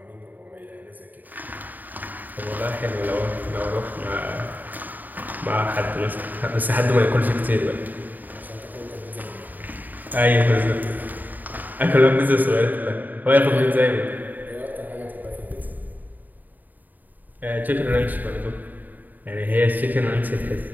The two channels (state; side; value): late; left; 0.085 ms